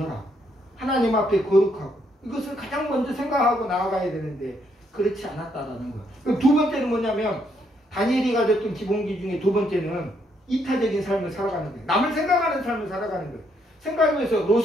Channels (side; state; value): both; normal; correlation 0.73